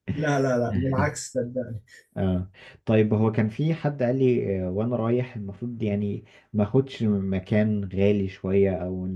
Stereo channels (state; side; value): identical; both; correlation 1.00